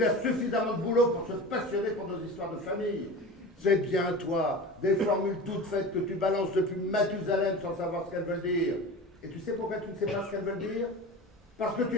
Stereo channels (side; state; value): both; normal; correlation 0.32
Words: a suffisamment de boulot pour se passionner pour nos histoires de famille. C'est bien toi, des formules toutes faites que tu balances depuis Mathusalem sans savoir ce qu'elles veulent dire. Et tu sais pourquoi tu ne sais pas ce qu'elles veulent dire? Parce que tu